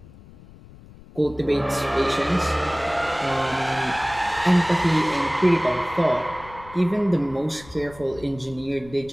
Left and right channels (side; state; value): left; noise; rumble, 20 dB below the sound